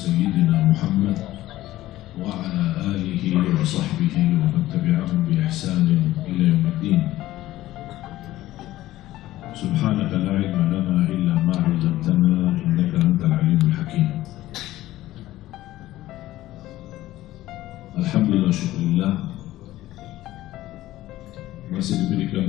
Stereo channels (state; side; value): quieter; right; 15.6 dB